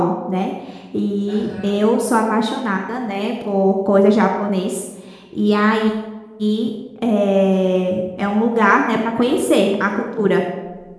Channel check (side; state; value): both; identical; correlation 1.00